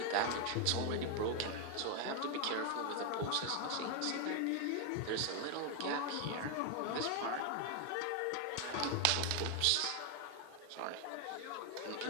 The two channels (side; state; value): both; different; correlation 0.01